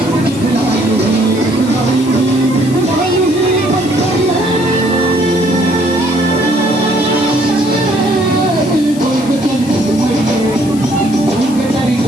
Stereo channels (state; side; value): noise; left; hiss, 16 dB below the sound